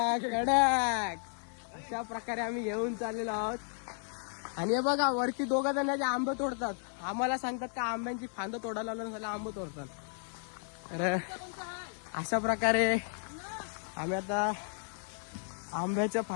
कडक अशा प्रकारे आम्ही घेऊन चाललेलो आहोत. आणि हे बघा वरती दोघं जण जे आंबे तोडतात आम्हाला सांगतात का आंब्यांची फांद तोडायला लावून झालं आंबे तोडतात. तर अशा प्रकारे आम्ही आता आंब्याच्या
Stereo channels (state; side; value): silent; right; 55 dB below the other